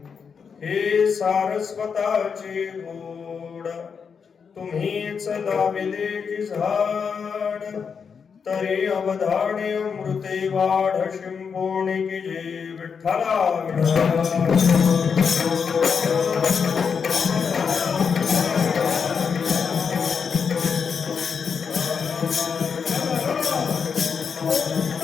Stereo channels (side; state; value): right; quieter; 6.2 dB